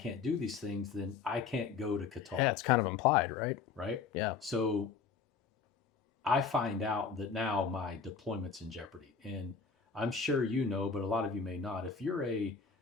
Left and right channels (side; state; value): right; quieter; 5.5 dB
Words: do these things, then I can't go to Qatar. Yeah, it's kind of implied, right? Right? Yeah. So I find out that now my deployment's in jeopardy. And I'm sure you know, but a lot of you may not. If you're a